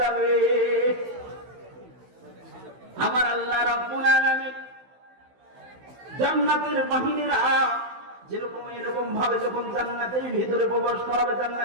আমার আল্লাহ রাব্বুল আলামিন জান্নাতের বাহিনীরা যেরকম এরকম ভাবে যখন জান্নাতের ভিতরে প্রবেশ করাবে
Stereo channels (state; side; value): late; left; 16 ms